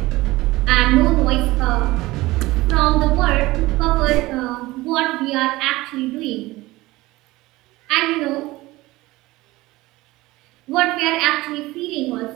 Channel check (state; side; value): quieter; left; 19.3 dB